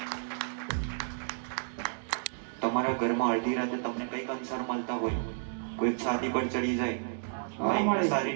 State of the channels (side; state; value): left; silent; 57 dB below the other